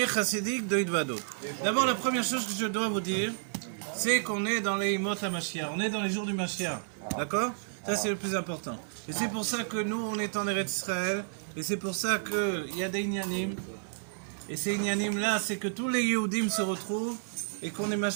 chassidique de Hidvado. D'abord, la première chose que je dois vous dire, c'est qu'on est dans les Imot HaMashiach. On est dans les jours du Mashiach. D'accord? Ça, c'est le plus important. Et c'est pour ça que nous, on est en Eretz Israël. Et c'est pour ça qu'il y a des Inyanim. Et ces Inyanim-là, c'est que tous les Yehudim se retrouvent et qu'on est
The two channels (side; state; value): left; silent; 57 dB below the other